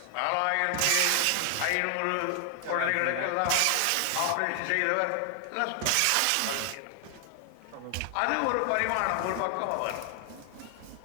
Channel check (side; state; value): both; different; correlation 0.00